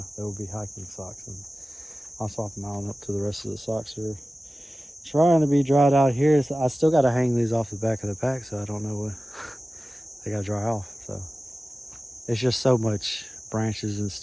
there will be hiking socks, and I'll swap them out up to the rest of the socks here. Trying to be dried out here. I still got to hang these off the back of the pack, so I don't know what they got to dry off. So it's just so much branches and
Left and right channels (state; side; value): normal; both; correlation 0.96